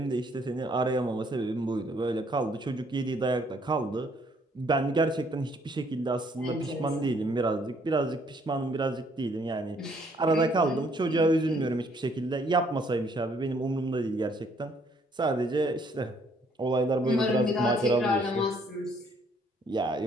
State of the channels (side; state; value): both; normal; correlation 0.65